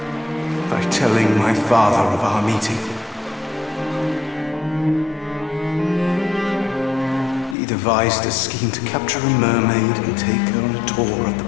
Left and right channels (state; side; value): drops out; right; at 7.6 s